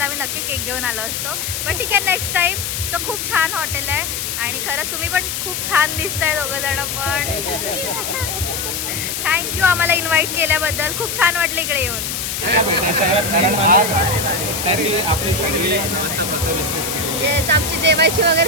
आम्ही नक्की केक घेऊन आलो असतो. पण ठीक आहे, नेक्स्ट टाइम. सो खूप छान हॉटेल आहे आणि खरंच तुम्ही पण खूप छान दिसताय दोघं जण पण. थँक्यू आम्हाला इन्व्हाइट केल्याबद्दल. खूप छान वाटलं इकडे येऊन. येस, आमची जेवायची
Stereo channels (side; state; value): left; noise; hiss, 3 dB below the sound